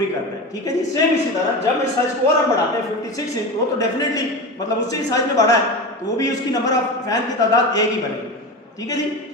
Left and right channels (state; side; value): normal; both; correlation 0.25